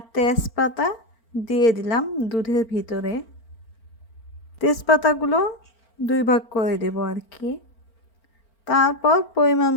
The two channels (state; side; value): late; right; 4.4 ms